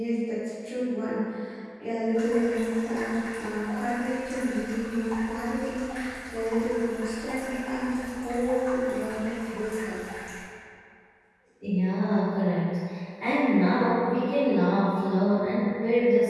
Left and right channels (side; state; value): both; identical; correlation 1.00